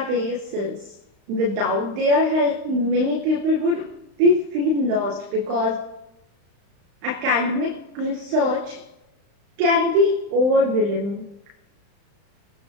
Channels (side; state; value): left; late; 35 ms